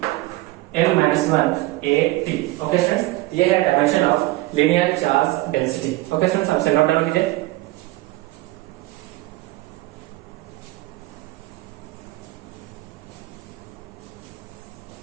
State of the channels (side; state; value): left; quieter; 19.4 dB